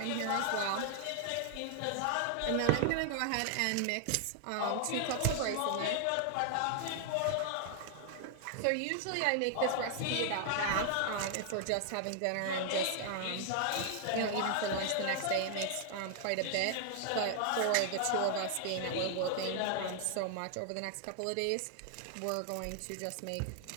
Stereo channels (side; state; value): both; different; correlation 0.00